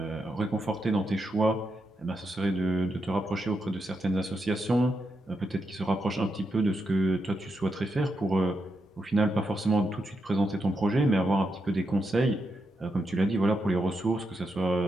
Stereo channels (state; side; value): normal; both; correlation 0.84